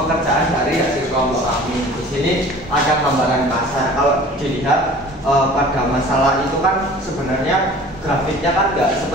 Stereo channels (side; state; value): both; normal; correlation 0.45